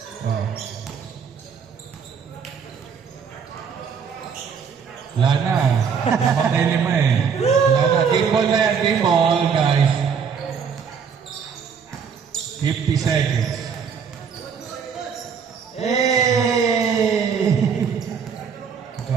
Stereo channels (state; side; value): quieter; left; 6.6 dB